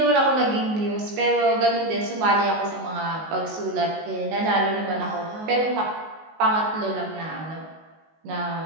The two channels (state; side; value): late; left; 19 ms